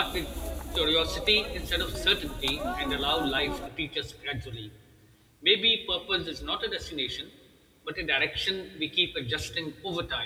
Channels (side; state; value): both; identical; correlation 1.00